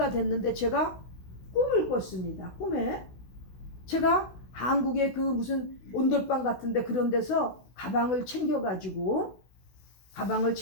됐는데 제가 꿈을 꿨습니다. 꿈에 제가 한국의 그 무슨 온돌방 같은데 그런 데서 가방을 챙겨서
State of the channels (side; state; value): right; late; 16 ms